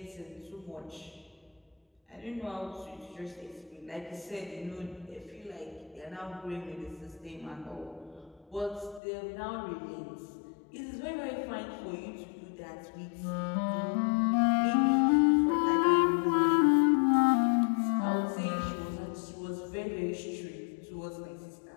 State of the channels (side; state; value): right; drops out; at 9.0 s